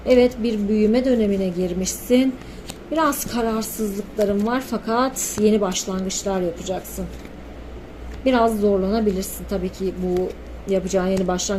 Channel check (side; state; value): both; identical; correlation 1.00